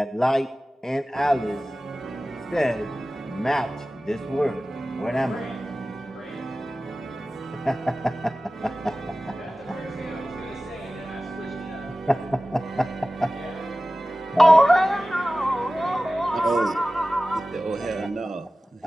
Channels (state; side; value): normal; both; correlation 0.96